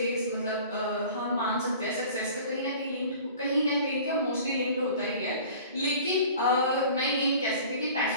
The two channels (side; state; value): both; inverted; correlation -0.44